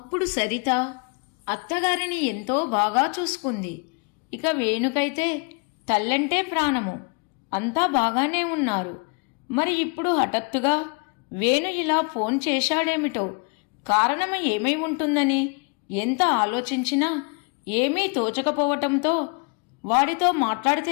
సరిత అత్తగారిని ఎంతో బాగా చూసుకుంది. ఇక వేణుకైతే తల్లంటే ప్రాణము. అంతా బాగానే ఉన్నారు. మరి ఇప్పుడు హఠాత్తుగా వేణు ఇలా ఫోన్ చేశాడేమిటో, కారణం ఏమై ఉంటుందని ఎంత ఆలోచించినా ఏమీ తోచకపోవటంతో వాడితో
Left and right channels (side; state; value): right; quieter; 34.1 dB